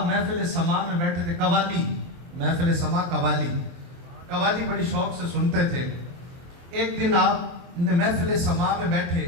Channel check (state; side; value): late; left; 23 ms